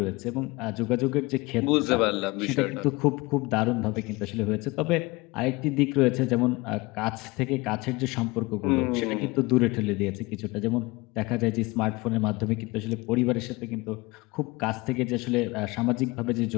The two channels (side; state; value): right; quieter; 23.3 dB